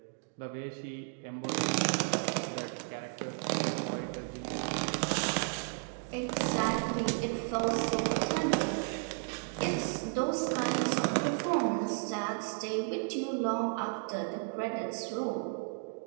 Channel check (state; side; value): silent; left; 55 dB below the other